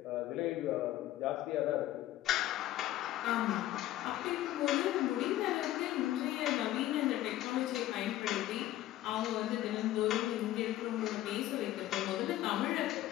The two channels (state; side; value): quieter; right; 14.3 dB